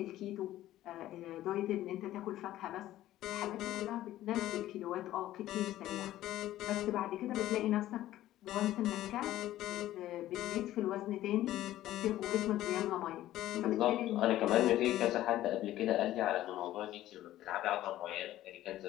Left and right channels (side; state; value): right; quieter; 14.2 dB